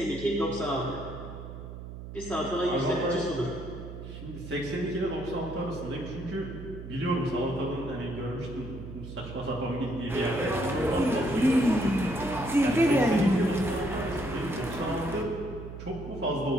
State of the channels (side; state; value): right; noise; hum, 11 dB below the sound